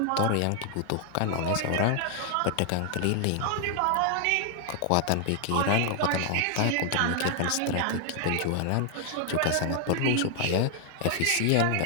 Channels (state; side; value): different; both; correlation 0.00